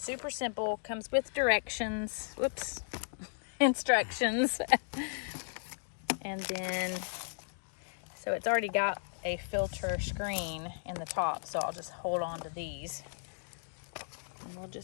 simple, comes with directions. Whoops, instructions. And then, so it's already got a filter screen in the top, so I'll just hold on to these. And we'll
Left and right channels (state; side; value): silent; right; digital silence